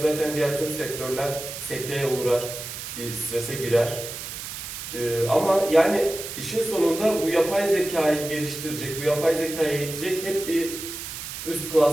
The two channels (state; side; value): noise; right; hiss, 8 dB below the sound